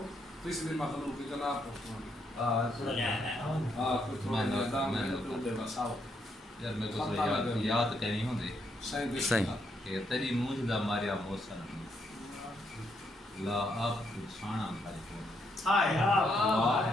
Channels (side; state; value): both; normal; correlation 0.76